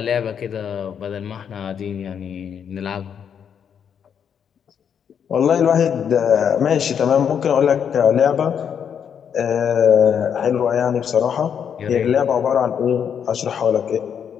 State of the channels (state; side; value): quieter; right; 7.9 dB